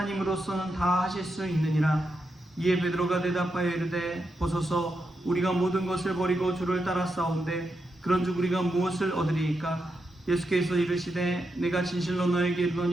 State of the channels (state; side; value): normal; both; correlation 0.85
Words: 다 하실 수 있느니라. 이에 베드로가 대답하여 이르되 보소서 우리가 모든 것을 버리고 주를 따라 싸운데 그런즉 우리가 무엇을 얻으리이까? 예수께서 이르시되 내가 진실로 너에게